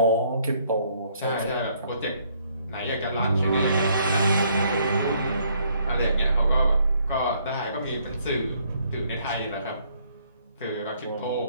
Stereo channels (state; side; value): inverted; both; correlation -0.67